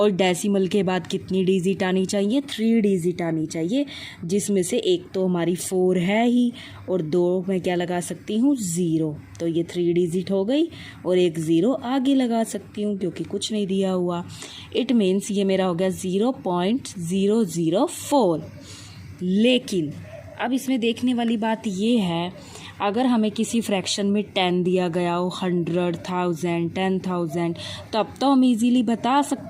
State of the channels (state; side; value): identical; both; correlation 1.00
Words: डेसिमल के बाद कितनी डिजिट आनी चाहिए, 3 डिजिट आनी चाहिए, जिसमें से एक तो हमारी 4 है ही, और 2 मैं क्या लगा सकती हूँ, 0। तो ये 3 डिजिट हो गई, और एक 0 आगे लगा सकती हूँ क्योंकि कुछ नहीं दिया हुआ। इट मीन्स ये मेरा हो गया 0.004। लेकिन अब इसमें देखने वाली बात ये है, अगर हमें किसी फ्रैक्शन में 10 दिया गया हो, 100, 1000, 10,000, तब तो हम इजीली बता